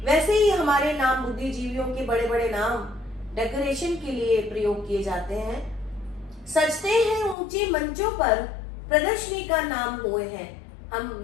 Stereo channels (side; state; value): right; drops out; at 7.4 s